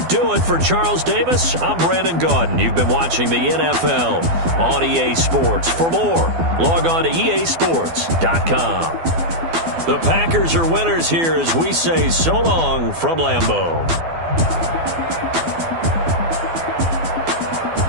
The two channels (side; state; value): left; late; 12 ms